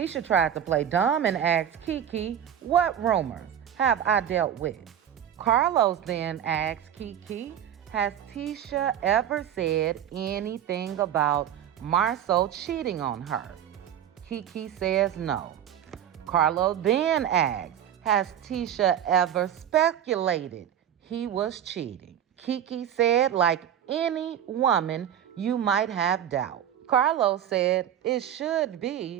tried to play dumb and asked Kiki, what rumors have I dealt with? Carlos then asked Kiki, has Tisha ever said anything about Marceau cheating on her? Kiki says no. Carlo then asks, has Tisha ever speculated he was cheating? Kiki said, like any woman, you might have doubt. Carlos said it should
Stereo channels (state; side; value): quieter; left; 10.0 dB